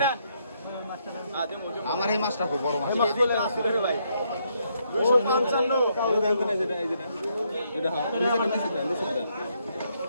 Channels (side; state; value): both; inverted; correlation -0.74